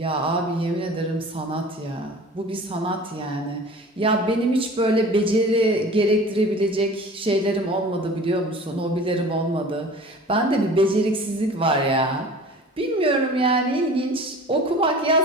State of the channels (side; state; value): both; normal; correlation 0.42